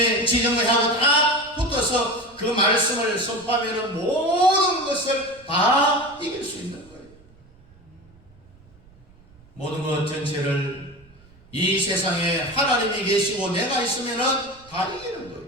지정의하고 딱 붙어서 그 말씀을 선포하면 모든 것을 다 이길 수 있는 거예요. 모든 것 전체를 이 세상에 하나님이 계시고 내가 있으면 다 이기는 거예요.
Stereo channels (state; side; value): noise; right; rumble, 27 dB below the sound